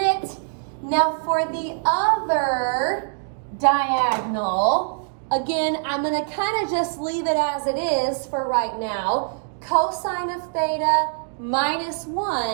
Now for the other diagonal, again, I'm going to kind of just leave it as it is for right now. Cosine of theta minus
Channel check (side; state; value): left; silent; digital silence